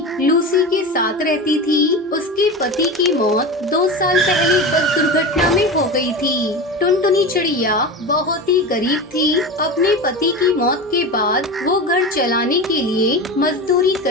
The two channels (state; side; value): normal; both; correlation 0.26